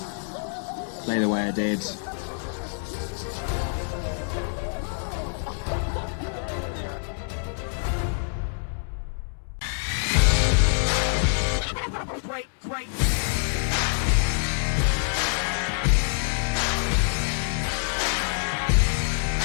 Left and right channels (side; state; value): right; silent; digital silence